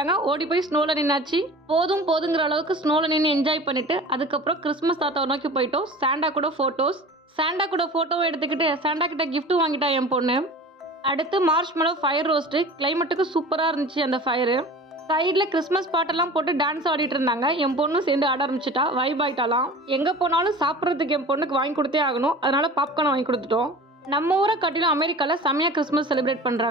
ஓடி போய் ஸ்னோவில் நின்னாச்சு. போதுங்கிற அளவுக்கு ஸ்னோவில் நின்று என்ஜாய் பண்ணிவிட்டு அதுக்கப்புறம் கிறிஸ்மஸ் தாத்தாவை நோக்கி போயிட்டோம். சாண்டா கூட ஃபோட்டோவும் எடுத்துக்கிட்டு சாண்டா கிட்ட கிஃப்ட்டும் வாங்கிட்டா என் பொண்ணு. அடுத்து மார்ஷ்மெலோ ஃபயர் ரோஸ்ட்டு. கிளைமேட்டுக்கு சூப்பராக இருந்துச்சு அந்த ஃபயரு. சைடில் கிறிஸ்மஸ் பாட்டெல்லாம் போட்டு டான்ஸ் ஆடிட்டு இருந்தாங்க. என் பொண்ணும் சேர்ந்து ஆட ஆரம்பிச்சிட்டா, வைப் ஆகிட்டாலாம். எங்கே போனாலும் சாப்பிட்றதுக்கு என் பொண்ணுக்கு வாங்கி கொடுத்தே ஆகணும், அதனால பாப்கார்ன் வாங்கி கொடுத்துட்டோம். நம்ம ஊரை காட்டிலும் அமெரிக்காவில் செம்மையாக கிறிஸ்மஸ் செலிப்ரேட்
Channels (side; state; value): both; normal; correlation 0.39